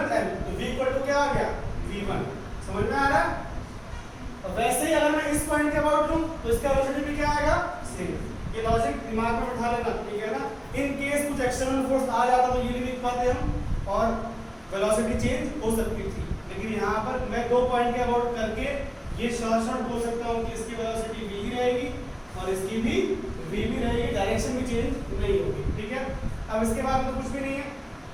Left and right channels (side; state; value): both; identical; correlation 1.00